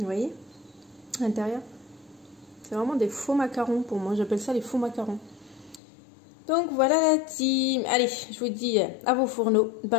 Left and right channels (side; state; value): right; drops out; at 5.8 s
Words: voyez, à l'intérieur, c'est vraiment des faux macarons pour moi. J'appelle ça les faux macarons. Donc voilà la team. Allez, je vous dis à vos fourneaux,